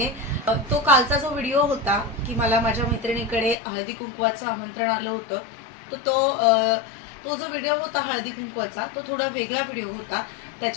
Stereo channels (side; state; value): right; drops out; at 3.6 s